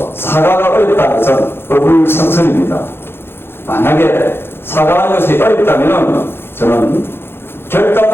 사과가 어렵다는 것은 어불성설입니다. 만약에 사과하는 것이 어렵다면 저는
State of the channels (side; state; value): right; late; 0.11 ms